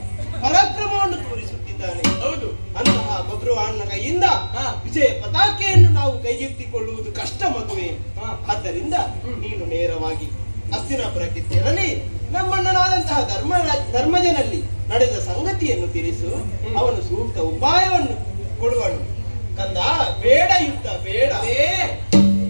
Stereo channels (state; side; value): inverted; both; correlation -1.00